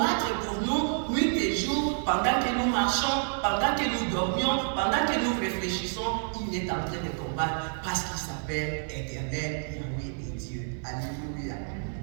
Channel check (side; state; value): left; silent; 59 dB below the other